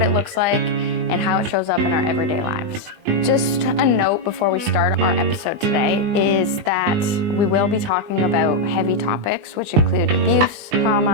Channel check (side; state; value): left; late; 20 ms